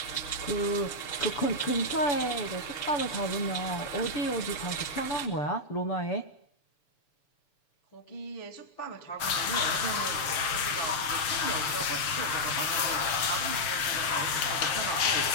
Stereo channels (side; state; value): right; late; 6.9 ms